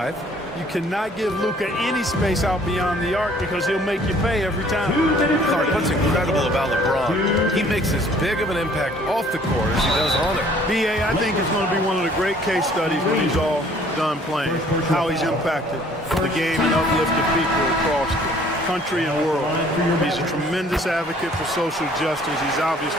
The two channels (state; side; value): normal; both; correlation 0.57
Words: You cannot give Luka any space out beyond the arc because he'll make you pay every time. Clark, what's incredible about LeBron, he makes as big of an impact off the court as he does on it. B.A., I think it's going to be one of the great case studies when he's all done playing, how he's impacted the game and uplifted people across the country and world. He's a tremendous advocate for social justice. He's